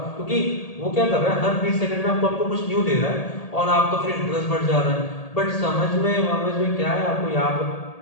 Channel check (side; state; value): right; late; 1.8 ms